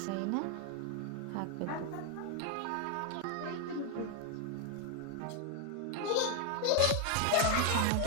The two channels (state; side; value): different; both; correlation 0.01